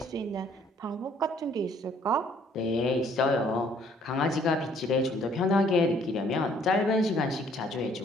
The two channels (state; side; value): normal; both; correlation 0.61